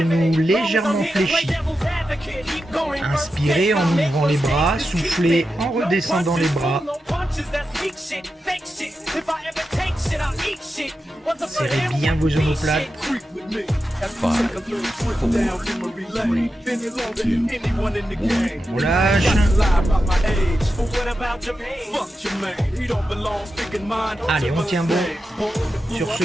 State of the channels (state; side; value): normal; both; correlation 0.90